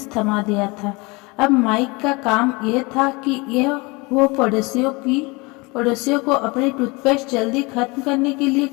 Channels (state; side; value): quieter; right; 26.2 dB